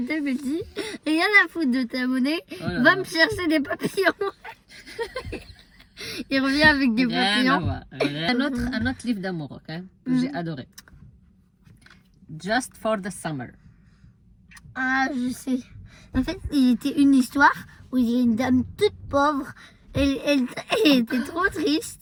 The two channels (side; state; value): both; identical; correlation 1.00